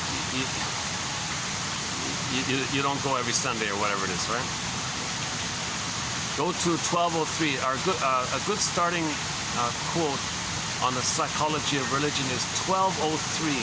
you don't go every Sunday or whatever it is, right? Go to 1203. A good starting quote on the psychology of religion is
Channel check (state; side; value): identical; both; correlation 1.00